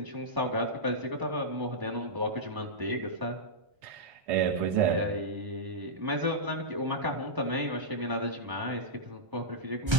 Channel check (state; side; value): late; left; 1.0 ms